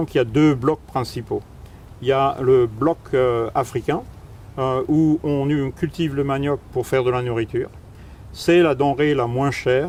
qu'il y a 2 blocs principaux. Il y a le bloc africain, où on cultive le manioc pour faire de la nourriture. C'est la denrée la moins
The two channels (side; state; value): both; identical; correlation 1.00